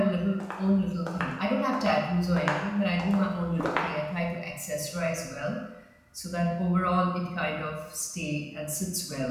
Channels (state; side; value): identical; both; correlation 1.00